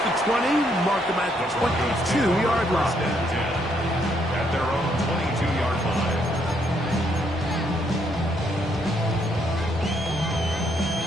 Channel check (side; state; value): both; normal; correlation 0.72